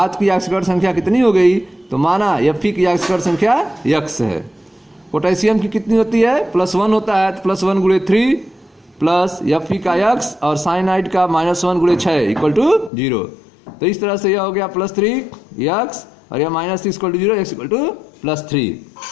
की ऑक्सीकरण संख्या कितनी हो गई। तो माना Fe की ऑक्सीकरण संख्या x है। पोटेशियम की कितनी होती है? +1 होता है, तो +1 × 3 प्लस Fe का x और साइनाइड का -1 × 6 इक्वल टू 0। तो इस तरह से यह हो गया +3x और यह -6 equal to 0, x equal to +3।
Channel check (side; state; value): right; drops out; at 12.9 s